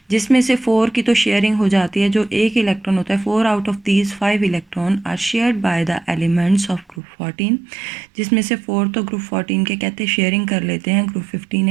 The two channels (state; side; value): drops out; left; at 7.0 s